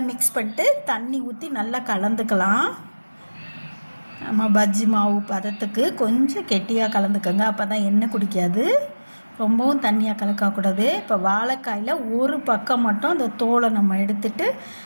மிக்ஸ் பண்ணிட்டு தண்ணி ஊற்றி நல்லா கலந்துக்கலாம். நம்ம பஜ்ஜி மாவு பதத்துக்கு கொஞ்சம் கெட்டியாக கலந்துக்கோங்க, அப்போ தான் எண்ணெய் குடிக்காது. ரொம்பவும் தண்ணியாக கலக்கக்கூடாது. இப்போ வாழைக்காயில் ஒரு பக்கம் மட்டும் அந்த தோலை நம்ம எடுத்துட்டு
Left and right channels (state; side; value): inverted; both; correlation -1.00